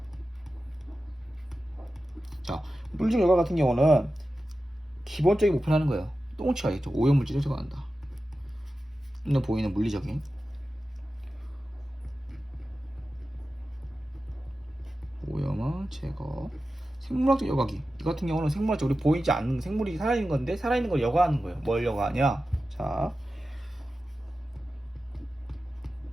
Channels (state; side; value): normal; both; correlation 0.93